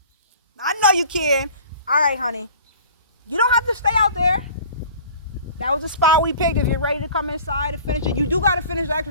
I know you can. All right, honey. You don't have to stay out there. That was the spot we picked. If you're ready to come inside and finish it. You do got to finish the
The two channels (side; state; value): both; inverted; correlation -0.46